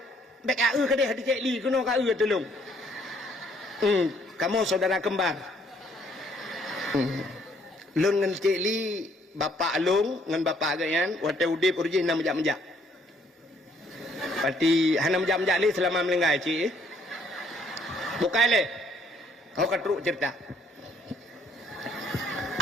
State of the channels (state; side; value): normal; both; correlation 0.65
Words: Be kat ke dia di Cik Li kena kat tolong. Kamu saudara kembar. Lung dengan Cik Li, bapa Lung dengan bapa agaknya, waktu udip urjin nak menjak-menjak. Pati hana menjak-menjak ni selama melenggai Cik. Bukan le. Kau katruk cerita.